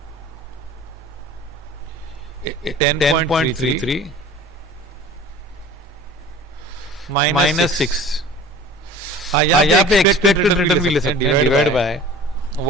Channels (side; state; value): both; normal; correlation 0.43